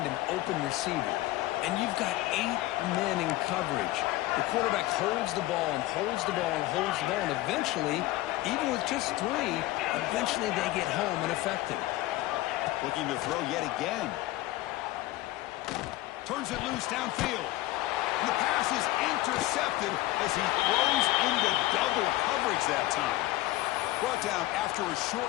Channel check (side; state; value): right; quieter; 17.5 dB